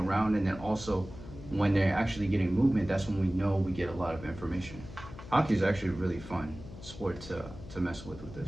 and then also when they're actually getting movement, that's when we know we get a lot of information. Hockey is actually a really fun sport to mess with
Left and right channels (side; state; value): left; noise; hum, 14 dB below the sound